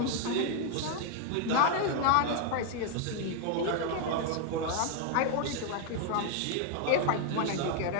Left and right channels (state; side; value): different; both; correlation 0.01